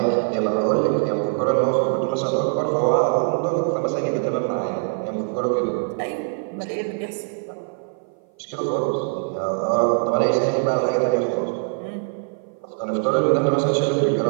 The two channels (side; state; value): left; silent; 57 dB below the other